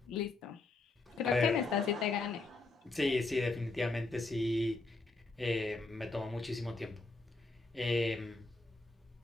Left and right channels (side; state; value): right; quieter; 3.3 dB